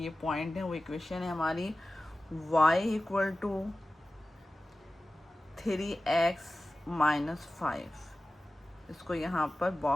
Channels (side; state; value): both; normal; correlation 0.96